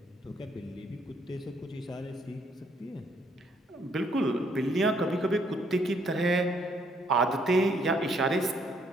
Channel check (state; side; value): normal; both; correlation 0.68